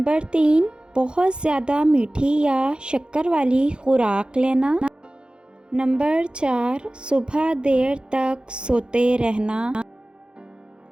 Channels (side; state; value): left; late; 0.051 ms